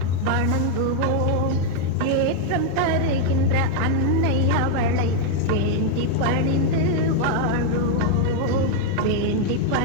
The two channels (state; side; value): different; both; correlation 0.00